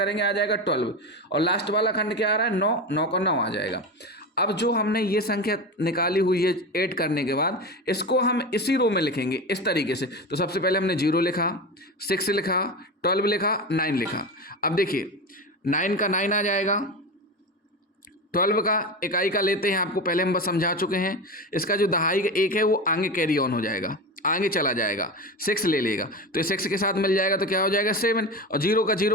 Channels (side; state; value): both; normal; correlation 0.24